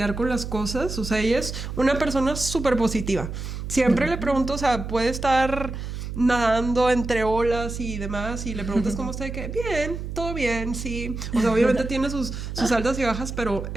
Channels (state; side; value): noise; right; hum, 7 dB below the sound